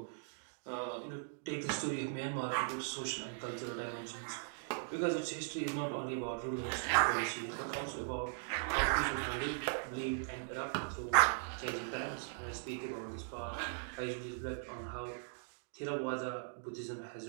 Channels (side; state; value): left; silent; digital silence